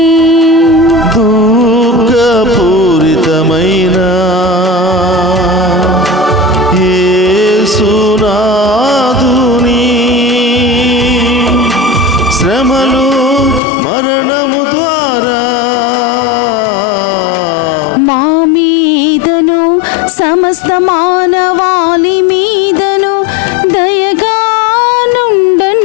దుఃఖపూరితమైన యేసునాదుని శ్రమలు మరణము ద్వారా మా మీదను సమస్త మానవాళి మీదను దయగా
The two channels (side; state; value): right; drops out; at 13.6 s